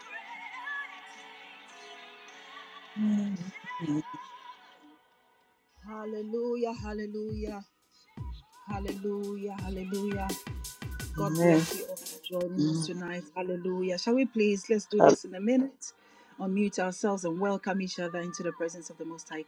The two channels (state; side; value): identical; both; correlation 1.00